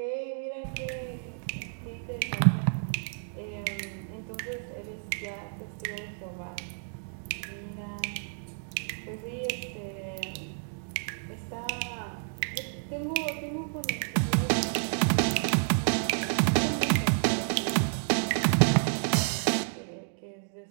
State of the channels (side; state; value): left; silent; digital silence